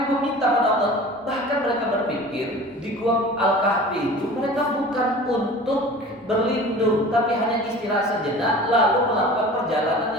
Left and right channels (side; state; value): both; normal; correlation 0.40